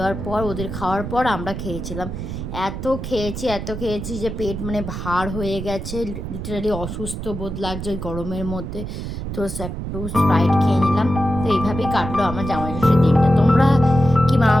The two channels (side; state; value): right; noise; rumble, 6 dB below the sound